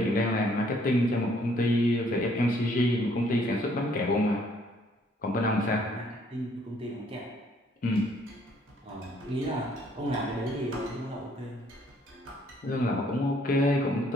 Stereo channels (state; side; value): normal; both; correlation 0.64